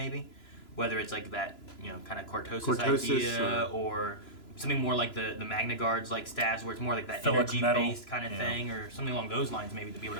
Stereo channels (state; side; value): late; right; 3.0 ms